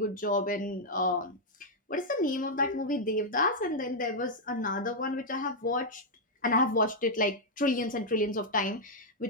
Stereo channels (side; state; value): both; normal; correlation -0.04